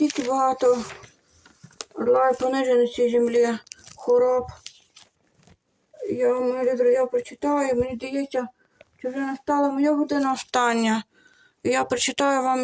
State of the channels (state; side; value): identical; both; correlation 1.00